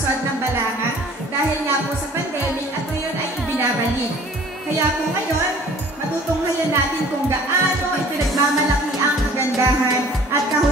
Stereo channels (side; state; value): both; normal; correlation 0.51